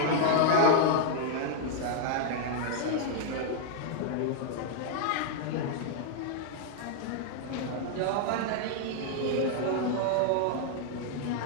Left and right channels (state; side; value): different; both; correlation -0.01